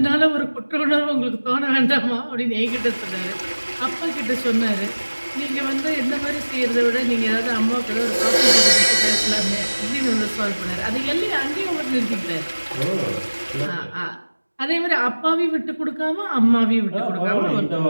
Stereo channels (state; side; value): inverted; both; correlation -1.00